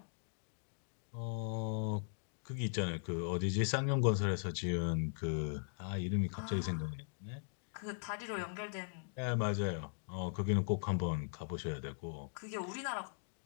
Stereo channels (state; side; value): silent; right; digital silence